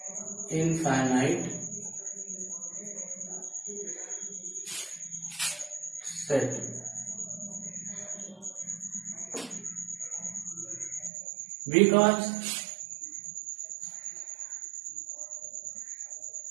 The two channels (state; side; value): drops out; left; at 11.1 s